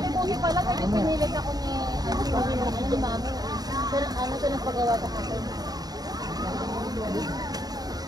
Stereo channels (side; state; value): left; late; 0.19 ms